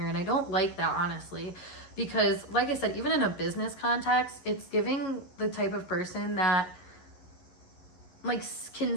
And I don't like that, honestly, because like I said, even in a business context, it's giving the type of person that like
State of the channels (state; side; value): late; right; 11 ms